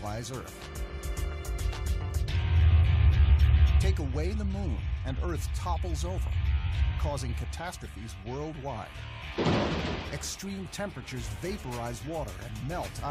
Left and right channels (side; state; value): both; identical; correlation 1.00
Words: Earth. Take away the moon, and Earth topples over, causing catastrophes worldwide. Extreme temperatures vaporize water and melt